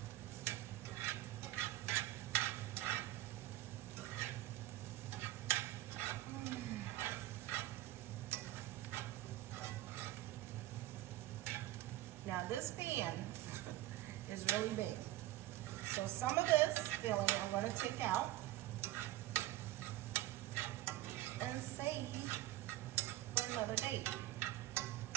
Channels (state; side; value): quieter; left; 15.7 dB